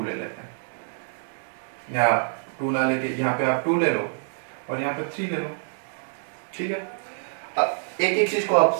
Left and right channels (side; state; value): left; silent; 61 dB below the other